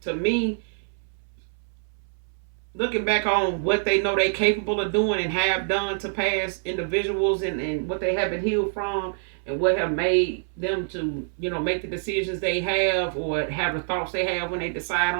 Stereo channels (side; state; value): left; silent; 61 dB below the other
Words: to me, looking back on what they know they capable of doing and have done to past individuals and what they have been healed from and what have made them to, you know, make the decisions they have or have the thoughts they have when they decide